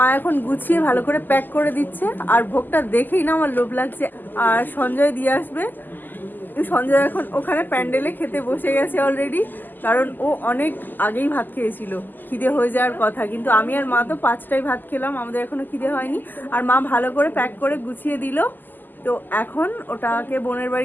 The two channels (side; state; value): right; late; 0.088 ms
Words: এখন গুছিয়ে ভালো করে প্যাক করে দিচ্ছে। আর ভোগটা দেখেই না আমার লোভ লাগছে। আর সঞ্জয় দিয়ে আসবে। সঞ্জয় এখন ওখানে প্যান্ডেলে খেতে বসে গেছে অলরেডি, কারণ ও অনেক আগেই ভাত খেয়েছিল, খিদে হয়ে যাওয়ার কথা। কিন্তু আমি আর মা তো 5টায় ভাত খেলাম, আমাদের এখনো খিদে হয়নি। আর মা ভালো করে প্যাক করে গুছিয়ে দিল। তো এখন ওটাকে বোনের